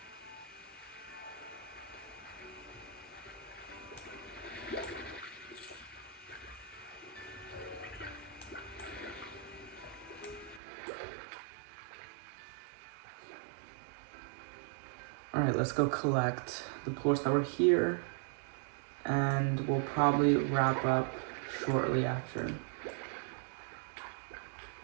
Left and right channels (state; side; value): drops out; left; at 10.6 s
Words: Alright, let's go collect the plorts that were here, and we'll probably wrap up shortly after.